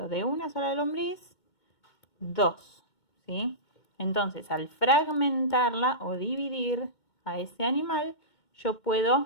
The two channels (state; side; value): late; right; 2.2 ms